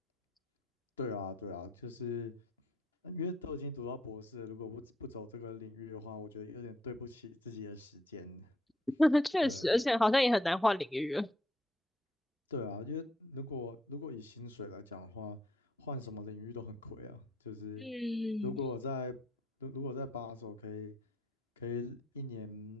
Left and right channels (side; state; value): both; normal; correlation 0.73